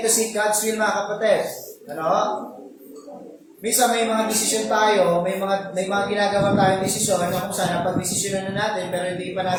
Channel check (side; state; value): both; identical; correlation 1.00